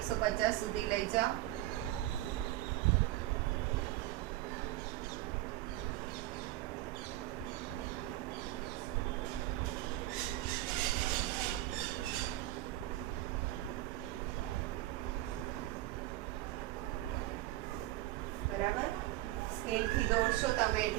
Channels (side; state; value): left; quieter; 16.5 dB